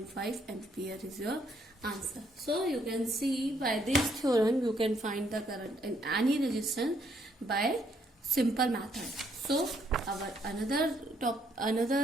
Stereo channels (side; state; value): both; normal; correlation 0.70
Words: ampere is your answer. So you can see by this theorem, you can find the current in any resistance by simple method. So our